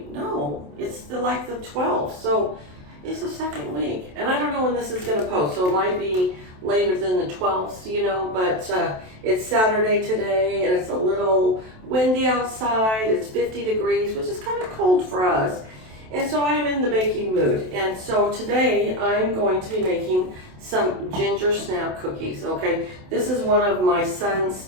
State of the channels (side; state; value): left; late; 27 ms